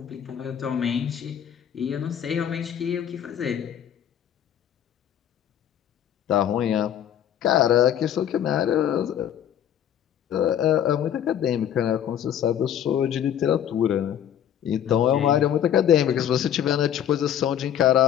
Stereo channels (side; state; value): right; quieter; 10.0 dB